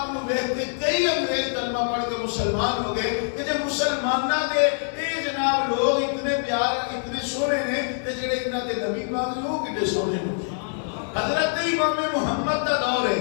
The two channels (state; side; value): silent; right; digital silence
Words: نو ویکھ کے کئی انگریز کلمہ پڑھ کے مسلمان ہو گئے کہ جب مسلماناں دے اے جناب لوگ اتنے پیار اتنے سونے نے تے جڑے انہاں دے نبی پاک لوگ کتنے سونے ہو. حضرت امام محمد دا دور ہے